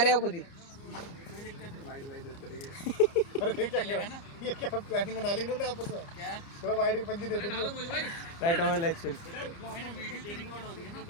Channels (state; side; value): late; right; 29 ms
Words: हो खुद ही। वाइड वाइड देते रहिए। ये क्या प्लानिंग बना ली इन्होंने आपस में? क्या? चलो वाइड के पंजी दे दे। डालो मोहित भाई, राइट ओवर लेग स्पिन।